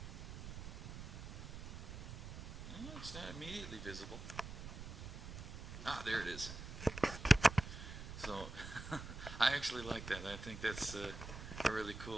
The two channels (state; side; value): noise; right; rumble, 9 dB below the sound